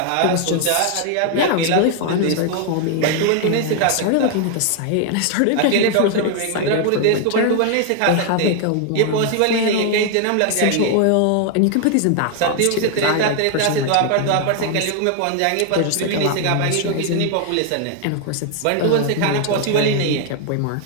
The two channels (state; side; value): different; both; correlation 0.00